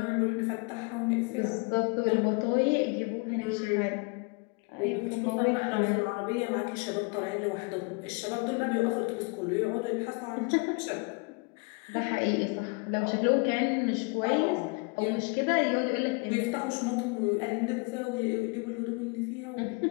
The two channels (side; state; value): right; quieter; 31.4 dB